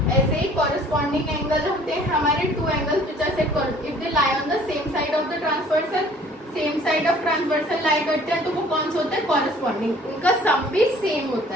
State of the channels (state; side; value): normal; both; correlation 0.54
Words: ऐसे ही कॉरेस्पॉन्डिंग एंगल होते हैं हमारे two angles which are set if they lie on the same side of the transversal. Same side of transversal lie करते हैं तो वो कौन सा होता है, कॉरेस्पॉन्डिंग। उनका सम भी सेम होता